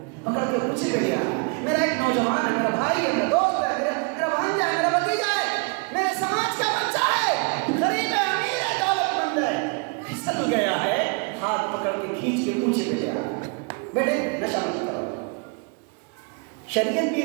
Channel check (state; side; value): quieter; left; 34.3 dB